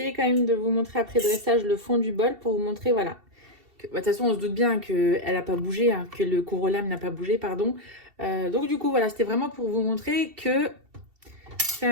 quand même de vous montrer après dressage le fond du bol pour vous montrer, voilà. De toute façon, on se doute bien qu'elle n'a pas bougé, hein, que le corollaire n'a pas bougé, pardon. Donc du coup, voilà, c'était vraiment pour vous montrer que c'est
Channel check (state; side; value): late; left; 2.7 ms